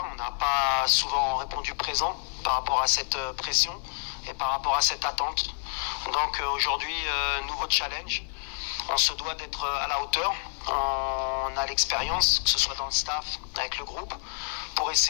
on n'a pas souvent répondu présent par rapport à cette pression et par rapport à cette attente. Donc aujourd'hui, nouveau challenge. On se doit d'être à la hauteur. On a l'expérience, que ce soit dans le staff, avec le groupe, pour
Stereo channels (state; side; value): silent; right; digital silence